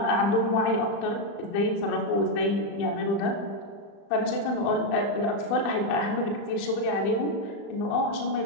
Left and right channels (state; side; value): late; right; 35 ms